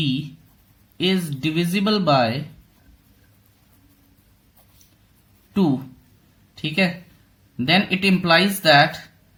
is divisible by 2, ठीक है, then it implies that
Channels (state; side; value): identical; both; correlation 1.00